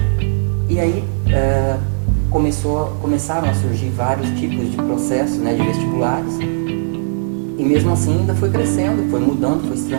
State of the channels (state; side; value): silent; left; digital silence